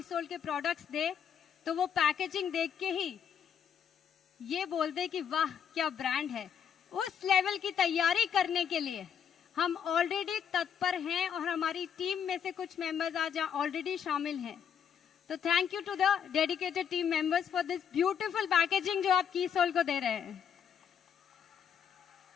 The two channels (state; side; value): quieter; right; 8.0 dB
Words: सोल के प्रोडक्ट्स दे तो वो पैकेजिंग देख के ही ये बोल दे कि वाह क्या ब्रांड है। उस लेवल की तैयारी करने के लिए हम ऑलरेडी तत्पर हैं और हमारी टीम में से कुछ मेंबर्स आज ऑलरेडी शामिल हैं। तो thank you to the dedicated team members for this beautiful packaging जो आप की सोल को दे रहे हैं।